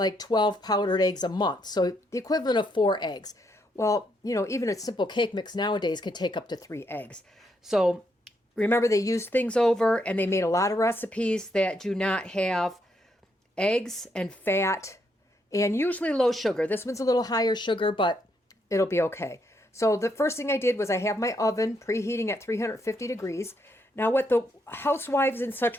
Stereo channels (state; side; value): normal; both; correlation 0.76